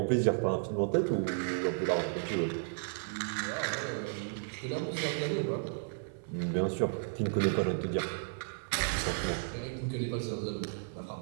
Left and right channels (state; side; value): silent; left; 55 dB below the other